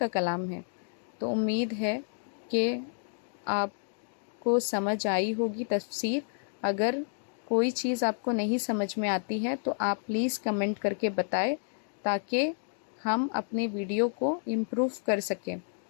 کلام ہے۔ تو امید ہے کہ آپ کو سمجھ آئی ہوگی تفسیر۔ اگر کوئی چیز آپ کو نہیں سمجھ میں آتی ہے تو آپ پلیز کمنٹ کر کے بتائیں، تاکہ ہم اپنے ویڈیو کو امپروو کر سکیں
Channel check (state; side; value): silent; right; digital silence